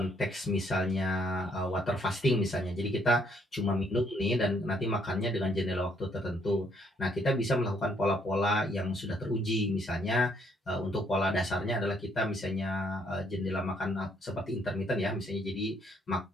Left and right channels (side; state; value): both; normal; correlation 0.68